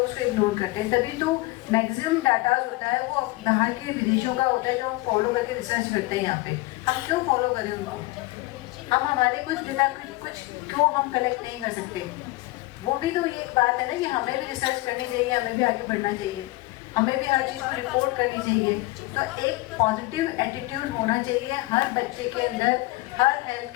उसको इग्नोर करते हैं, तभी तो मैक्सिमम डाटा होता है वो बाहर के विदेशों का होता है जो हम फॉलो करके रिसर्च करते हैं। यहाँ पे हम क्यों फॉलो करें उनको, हम हमारे कुछ डेटा कुछ क्यों हम कलेक्ट नहीं कर सकते? वो भी तो ये एक बात है ना कि हमें भी रिसर्च करनी चाहिए, हमें भी आगे बढ़ना चाहिए, हमें भी हर चीज़ को रिपोर्ट करनी चाहिए। तो एक पॉजिटिव एटीट्यूड होना चाहिए हर बच्चे के अंदर, हर हेल्थ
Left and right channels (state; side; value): quieter; right; 20.8 dB